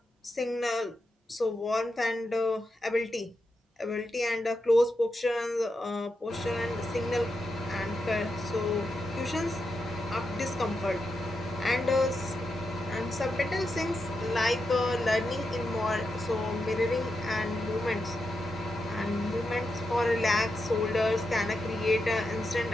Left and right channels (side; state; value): both; normal; correlation 0.86